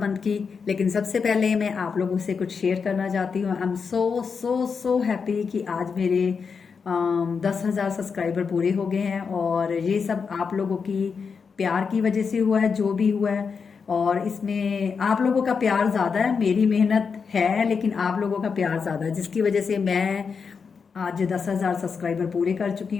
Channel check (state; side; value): quieter; right; 5.7 dB